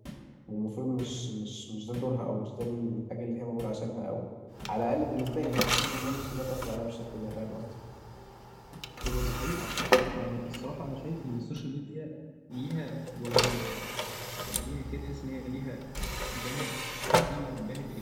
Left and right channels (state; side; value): identical; both; correlation 1.00